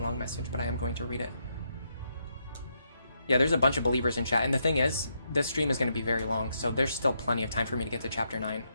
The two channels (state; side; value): inverted; both; correlation -0.79